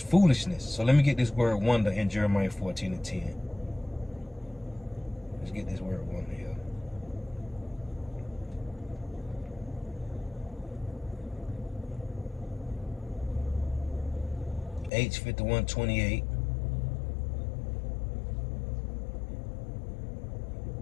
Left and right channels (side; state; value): right; drops out; at 14.9 s